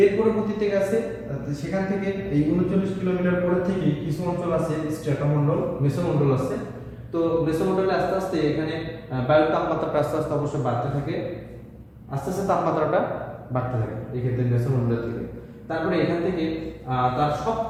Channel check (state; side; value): identical; both; correlation 1.00